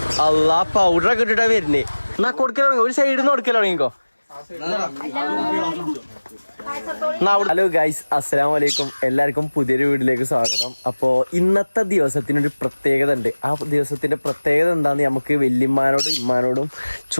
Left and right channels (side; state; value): both; inverted; correlation -1.00